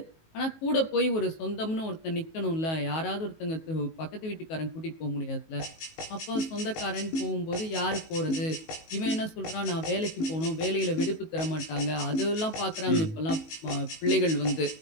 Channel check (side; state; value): right; late; 19 ms